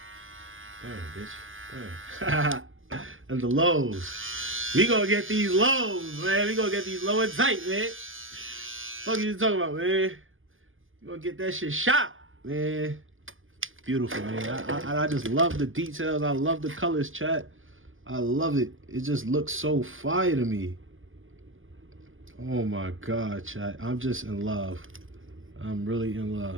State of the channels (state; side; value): late; left; 0.58 ms